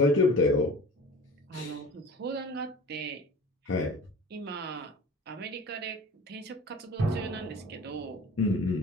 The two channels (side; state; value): both; normal; correlation 0.41